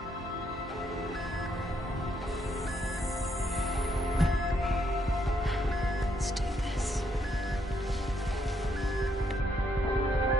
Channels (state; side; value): normal; both; correlation 0.75